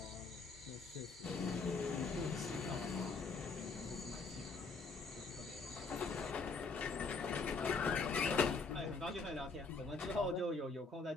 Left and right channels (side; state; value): right; quieter; 4.2 dB